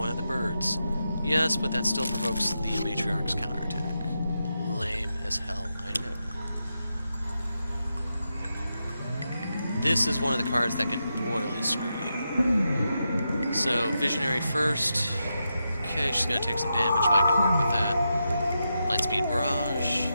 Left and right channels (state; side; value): inverted; both; correlation -0.87